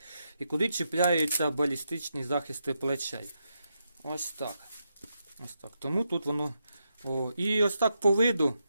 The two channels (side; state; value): both; inverted; correlation -0.84